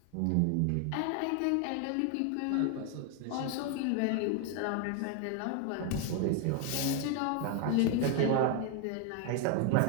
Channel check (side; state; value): both; different; correlation 0.01